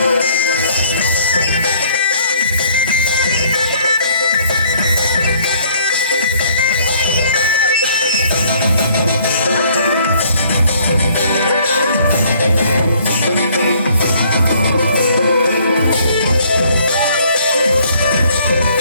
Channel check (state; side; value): inverted; both; correlation -0.61